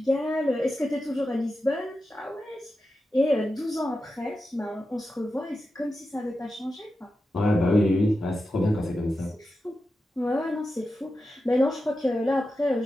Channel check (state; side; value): normal; both; correlation 0.91